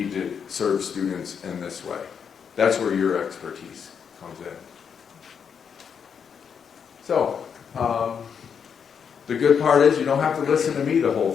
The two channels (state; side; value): quieter; right; 7.0 dB